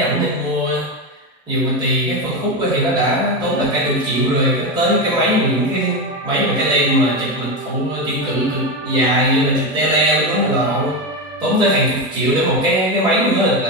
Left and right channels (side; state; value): both; normal; correlation 0.15